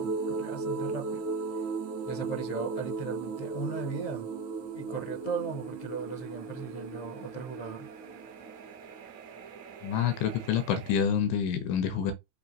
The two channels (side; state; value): right; late; 15 ms